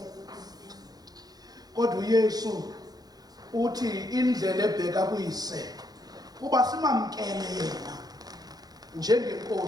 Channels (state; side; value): late; left; 0.19 ms